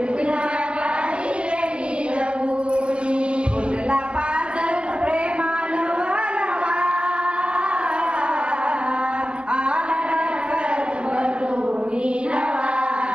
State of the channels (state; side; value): late; left; 0.051 ms